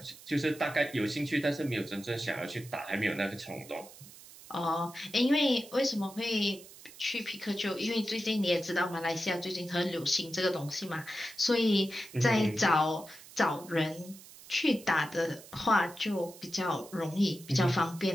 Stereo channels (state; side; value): noise; right; hiss, 19 dB below the sound